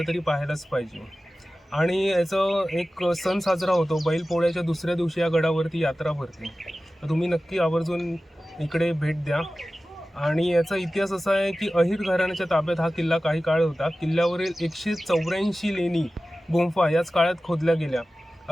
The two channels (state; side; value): normal; both; correlation 0.95